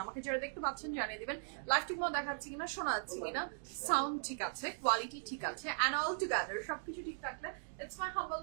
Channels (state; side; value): silent; left; digital silence